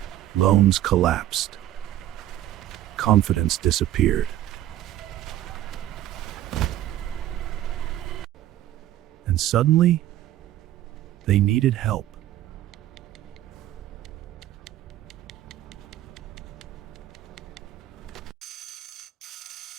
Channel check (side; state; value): left; quieter; 13.2 dB